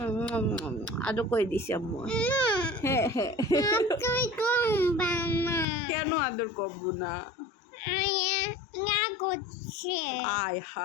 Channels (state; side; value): drops out; right; at 5.7 s